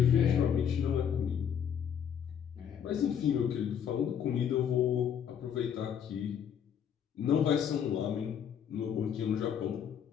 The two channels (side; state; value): right; quieter; 8.4 dB